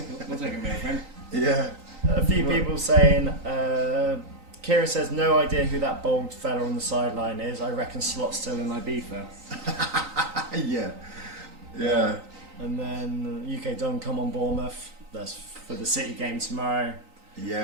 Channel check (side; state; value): left; late; 3.9 ms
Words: We'll take a mill for him. Yeah. A few people saying, Kieran says, no idea who that bald fella on the sideline is. I reckon Slot's still in Ibiza. Yeah. And then UK Don come on Bournemouth. That's for the City game tomorrow.